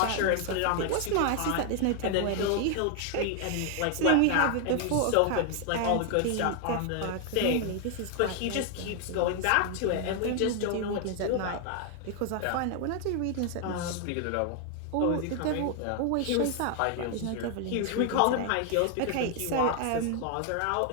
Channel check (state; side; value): different; both; correlation 0.00